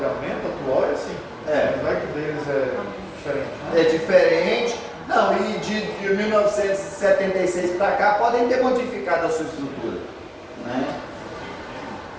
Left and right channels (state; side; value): identical; both; correlation 1.00